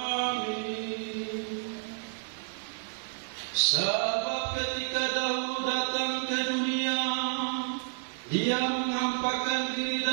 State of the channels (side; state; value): left; silent; 58 dB below the other